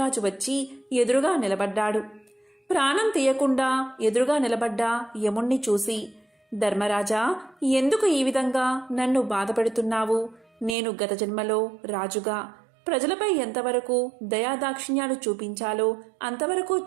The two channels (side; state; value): left; drops out; at 10.8 s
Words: వచ్చి ఎదురుగా నిలబడ్డాడు. ప్రాణం తీయకుండా ఎదురుగా నిలబడ్డ యముణ్ణి చూసి, ధర్మరాజా, ఎందుకు ఈ విధంగా నన్ను బాధపెడుతున్నావు? నేను గత జన్మలో రాజుగా ప్రజలపై ఎంతవరకు దయాదాక్షిణ్యాలు చూపించాలో అంతవరకు